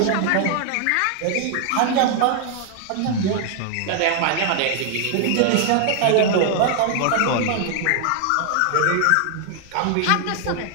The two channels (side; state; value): both; different; correlation 0.00